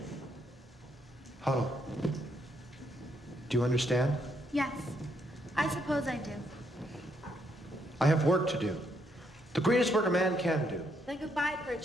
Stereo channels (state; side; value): normal; both; correlation 0.74